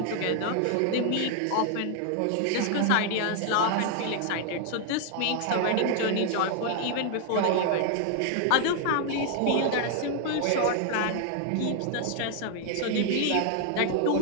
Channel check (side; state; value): both; different; correlation 0.00